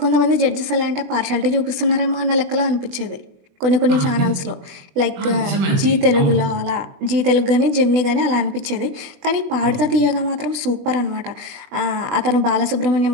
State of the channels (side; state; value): left; late; 20 ms